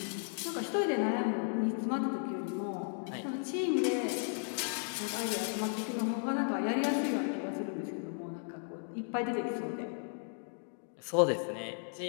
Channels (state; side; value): silent; right; 54 dB below the other